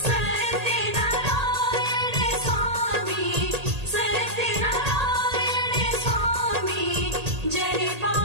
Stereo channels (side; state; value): left; late; 1.8 ms